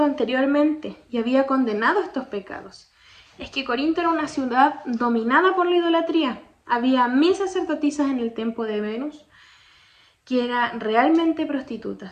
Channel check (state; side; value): identical; both; correlation 1.00